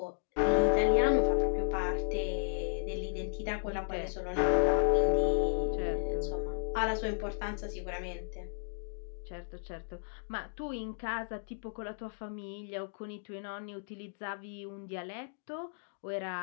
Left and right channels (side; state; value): right; silent; digital silence